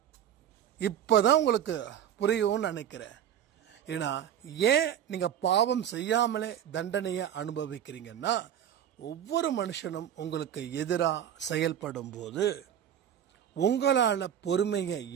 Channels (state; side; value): quieter; left; 9.8 dB